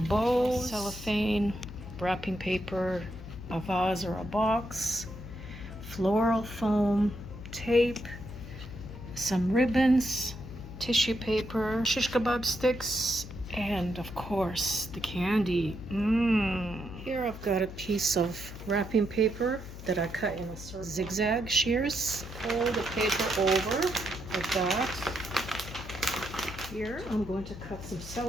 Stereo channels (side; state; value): left; noise; hum, 13 dB below the sound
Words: bows, cellophane, wrapping paper, a vase or a box, floral foam, tape, some ribbons, tissue paper, shish kebab sticks, and of course the candy. Here I've got a piece of wrapping paper that I cut in a circle. Zigzag shears. Fold the paper over like that. Here I'm going to cut some